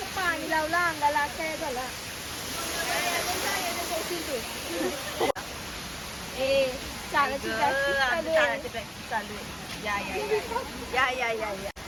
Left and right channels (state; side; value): identical; both; correlation 1.00